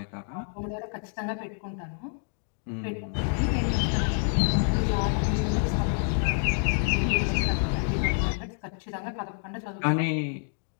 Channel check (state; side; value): silent; right; 57 dB below the other